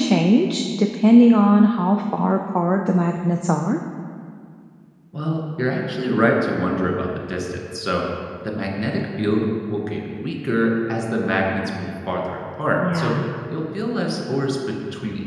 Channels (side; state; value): both; identical; correlation 1.00